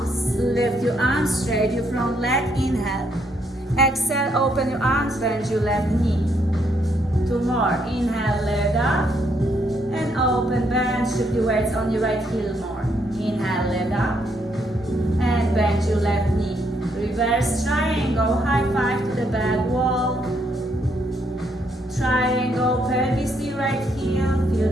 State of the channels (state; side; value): normal; both; correlation 0.74